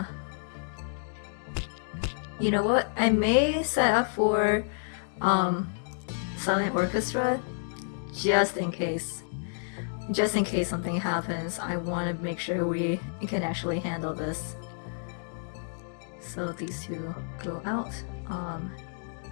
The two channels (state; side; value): silent; right; digital silence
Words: You know what? I may set up for silent orchestra just in case. Just in case something happens, I want to make sure we can actually handle this. So these two go out.